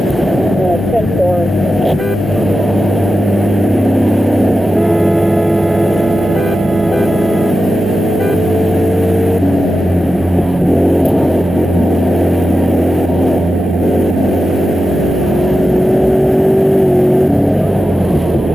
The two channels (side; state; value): both; normal; correlation 0.92